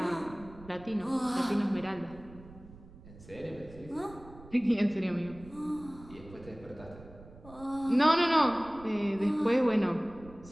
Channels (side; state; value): right; noise; rumble, 19 dB below the sound